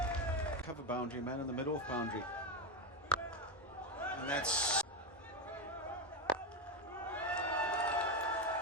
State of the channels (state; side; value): normal; both; correlation 0.12